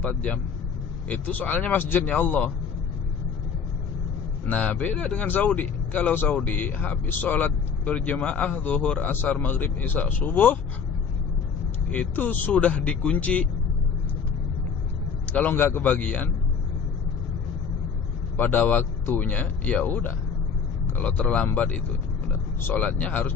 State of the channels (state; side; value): quieter; right; 6.2 dB